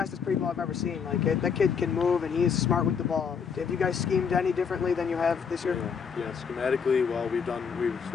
people I've ever seen. That kid can move, and he's smart with the ball. Have you guys schemed any differently than you have this year? Yeah, schematically, well, we've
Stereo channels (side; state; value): right; quieter; 6.5 dB